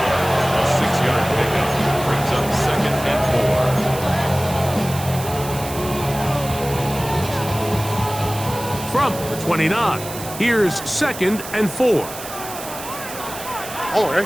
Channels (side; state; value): right; noise; hiss, 11 dB below the sound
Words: 6-yard pickup brings up 2nd and 4. From the 29, here's 2nd and 4.